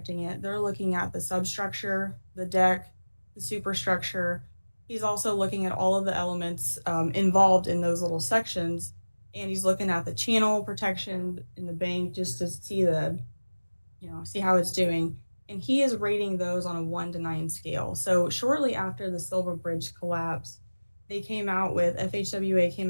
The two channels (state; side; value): inverted; both; correlation -1.00